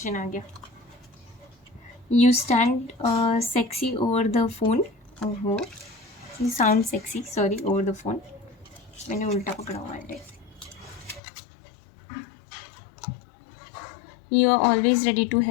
आ गया। You stand sexy over the phone, ओहो, you sound sexy, sorry, over the phone, मैंने उल्टा पकड़ा हुआ है। You are always ready to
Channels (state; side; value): drops out; right; at 11.2 s